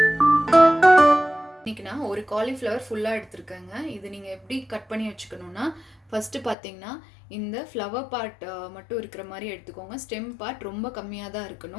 இன்றைக்கி நான் ஒரு காலிஃப்ளவர் ஃபுல்லாக எடுத்துருக்கேங்க. இது நீங்கள் எப்படி கட் பண்ணி வச்சுக்கணுன்னா, ஃபஸ்ட்டு பார்த்தீங்கன்னா இந்த ஃப்ளவர் பார்ட் மட்டும் இருக்கிற மாதிரி எடுத்துக்கோங்க. ஸ்டெம் பார்ட் ரொம்ப கம்மியாக தான்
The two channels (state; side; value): drops out; right; at 6.6 s